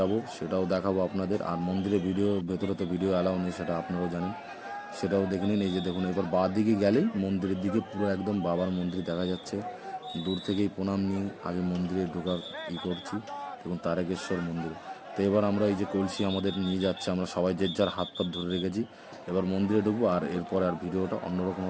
সেটাও দেখাবো আপনাদের। আর মন্দিরের ভেতরে তো ভিডিও অ্যালাউ নেই, সেটা আপনারাও জানেন, সেটাও দেখে নিন। এই যে দেখুন এবার বাঁ দিকে গেলেই মন্দিরের দিকে পুরো একদম বাবার মন্দির দেখা যাচ্ছে। দূর থেকেই প্রণাম নিয়ে আগে মন্দিরে ঢোকার করছি, দেখুন তারকেশ্বর মন্দির। তো এবার আমরা এই যে কলসি আমাদের নিয়ে যাচ্ছে, আমরা সবাই যে যার হাত পাত ধরে রেখেছি। এবার মন্দিরে ঢুকবো আর এরপরে আর ভিডিওটা অন্যরকম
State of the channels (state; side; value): identical; both; correlation 1.00